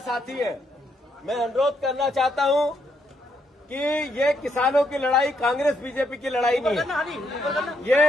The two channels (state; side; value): normal; both; correlation 0.76